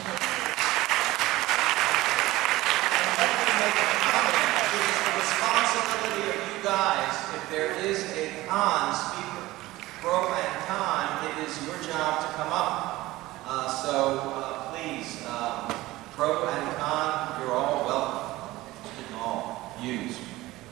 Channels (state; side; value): quieter; left; 18.1 dB